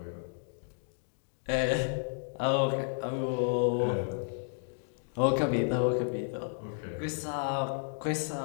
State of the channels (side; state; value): right; silent; digital silence